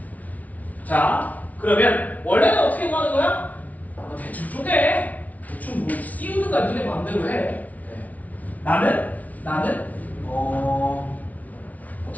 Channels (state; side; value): late; right; 0.072 ms